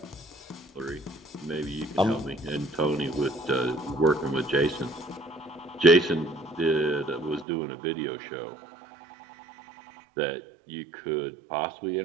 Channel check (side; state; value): left; drops out; at 7.5 s